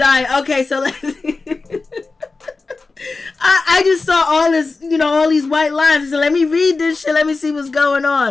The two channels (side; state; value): right; quieter; 3.9 dB